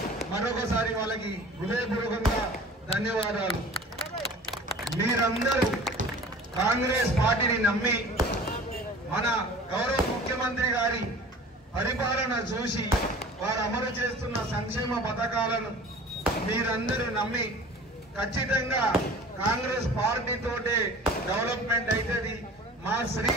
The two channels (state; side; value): normal; both; correlation 0.43